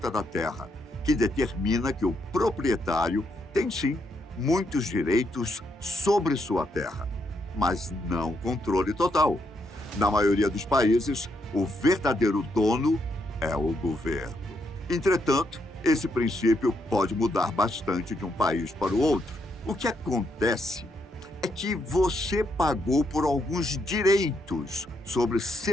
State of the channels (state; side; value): normal; both; correlation 0.78